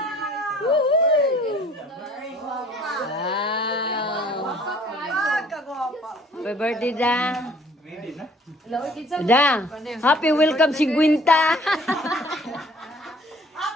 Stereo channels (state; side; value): normal; both; correlation 0.56